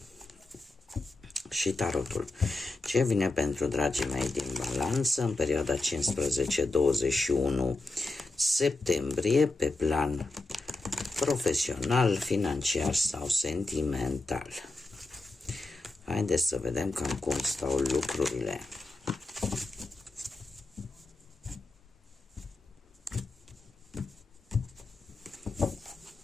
tarotul. Ce vine pentru dragii mei din Balanță în perioada 15-21 septembrie pe plan profesional, financiar sau sentimental. Haideți să vedem cam cum stau lucrurile.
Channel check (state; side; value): quieter; right; 3.0 dB